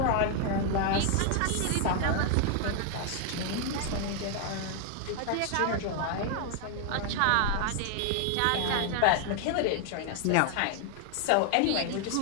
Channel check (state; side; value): different; both; correlation 0.00